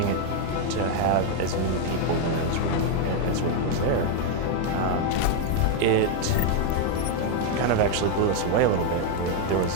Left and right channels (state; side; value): different; both; correlation 0.01